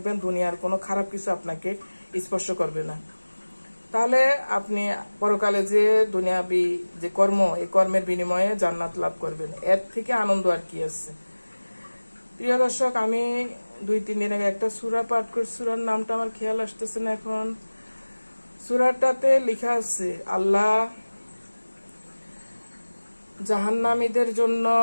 দুনিয়ার কোনো খারাপ কিছু আপনাকে স্পর্শ করবে না। তাহলে আপনি পরকালে যে দুনিয়াবি যে কর্ম, এই কর্মের বিনিময়ে জান্নাত লাভ করবেন। এর থেকে আনন্দ আর কি আছে। প্রিয় দর্শক, আমি 2-3 দিন আগে একটা সূরা পাঠ করছি, সূরার নামটা আমার খেয়াল আসতেছে না এখন। সূরাটাতে লেখা আছে আল্লাহ জাহান্নামীদের জন্য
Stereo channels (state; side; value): inverted; both; correlation -1.00